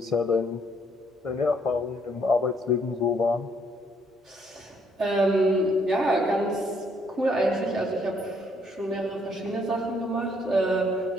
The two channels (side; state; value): both; normal; correlation 0.69